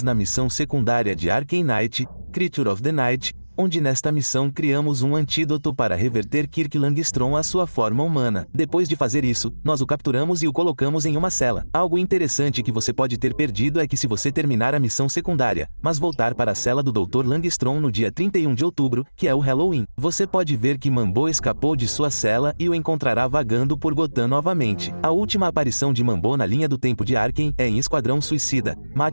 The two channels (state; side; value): inverted; both; correlation -1.00